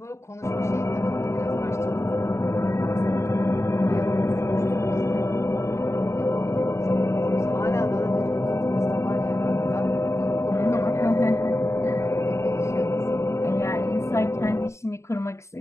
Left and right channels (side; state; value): right; late; 0.14 ms